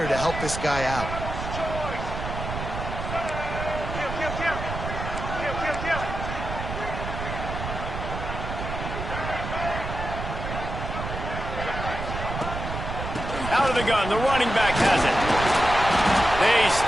to help this guy out. Out of the gun, the running back has it. They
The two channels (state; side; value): noise; right; rumble, 6 dB below the sound